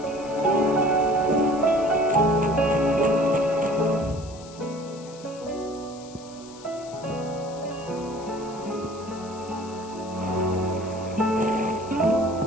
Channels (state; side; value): noise; left; hiss, 20 dB below the sound